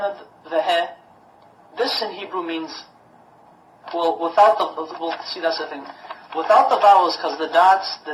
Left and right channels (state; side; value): identical; both; correlation 1.00